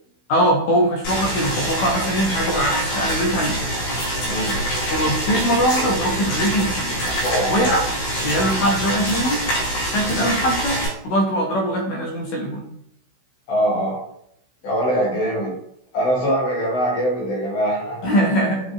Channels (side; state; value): right; late; 16 ms